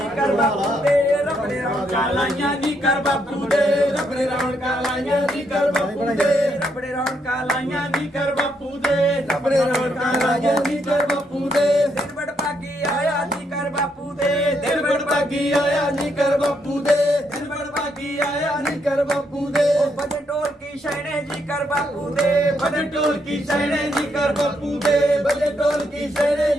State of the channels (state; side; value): normal; both; correlation 0.76